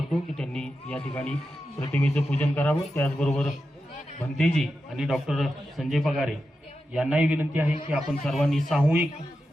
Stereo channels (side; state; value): both; normal; correlation 0.89